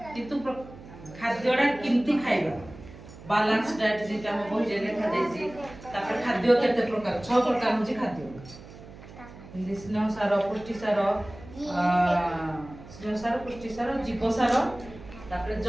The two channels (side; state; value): right; noise; hum, 17 dB below the sound